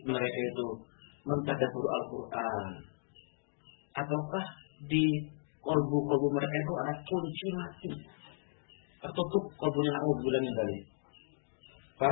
mereka itu mentadabbur Al-Quran, ataukah di kolbu-kolbu mereka itu ada kunci mati, tertutup kolbunya, na'udzubillah min dzalik.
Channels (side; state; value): right; silent; digital silence